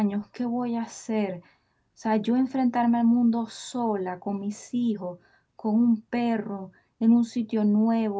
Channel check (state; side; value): identical; both; correlation 1.00